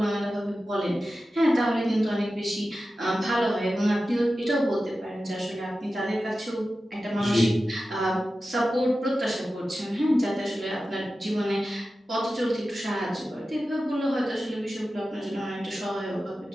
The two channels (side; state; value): both; normal; correlation 0.93